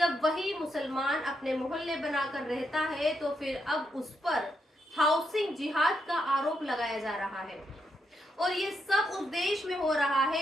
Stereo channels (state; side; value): normal; both; correlation 0.80